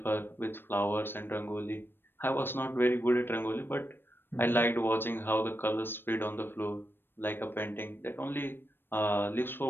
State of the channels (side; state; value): right; late; 0.099 ms